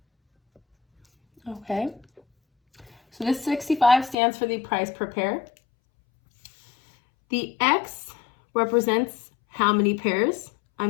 Okay. So this 65 stands for the price per pair. The X represents how many pairs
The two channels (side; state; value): right; drops out; at 4.2 s